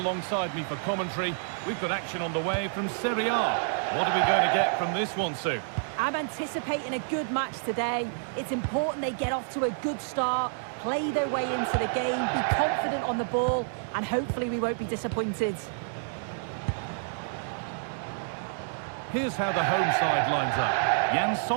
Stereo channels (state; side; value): silent; left; digital silence